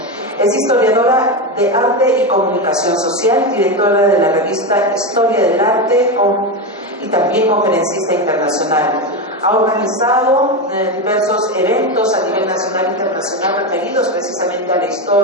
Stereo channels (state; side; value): normal; both; correlation 0.15